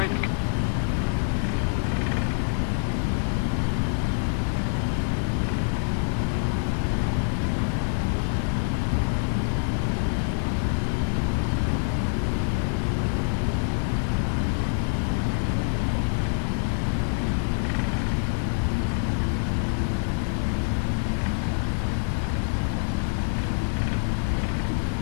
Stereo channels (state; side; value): silent; right; digital silence